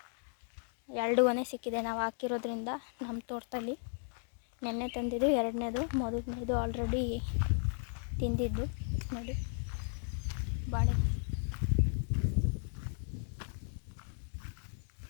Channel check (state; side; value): silent; right; 54 dB below the other